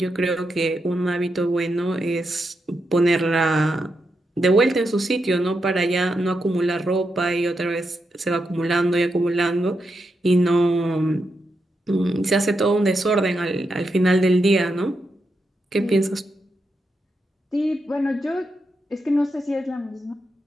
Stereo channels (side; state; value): both; normal; correlation 0.85